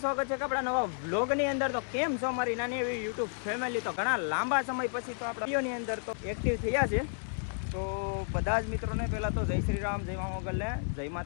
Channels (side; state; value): right; silent; digital silence